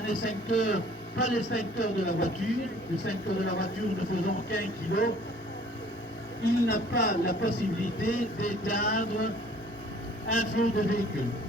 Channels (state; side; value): normal; both; correlation 0.54